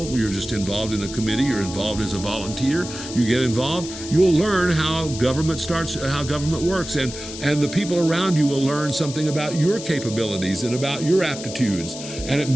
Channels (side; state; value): left; noise; hiss, 11 dB below the sound